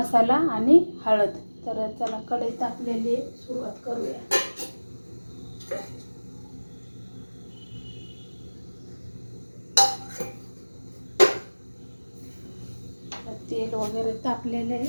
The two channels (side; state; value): both; inverted; correlation -1.00